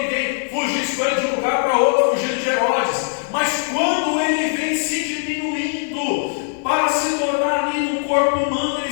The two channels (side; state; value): right; silent; digital silence